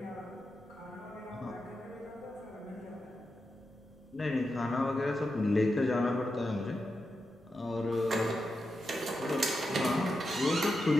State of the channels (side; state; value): both; normal; correlation 0.88